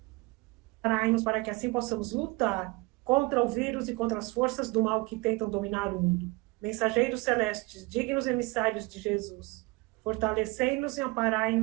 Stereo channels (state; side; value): quieter; left; 24.8 dB